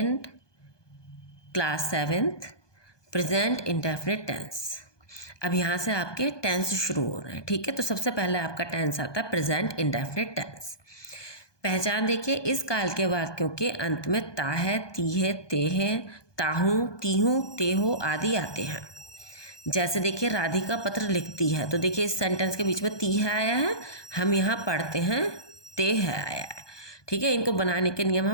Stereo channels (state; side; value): late; right; 1.2 ms